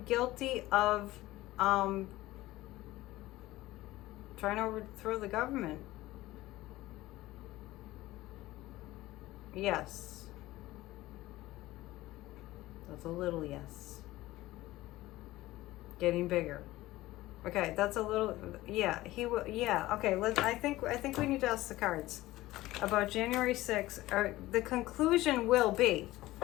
guilty of trying to overthrow the government? Yes. That's a little yes. Getting bigger. Okay, that's a little, yeah, he will, yeah, okay, I think we need to ask the cards about January 6th. Or the conclusion will be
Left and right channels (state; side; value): quieter; right; 17.3 dB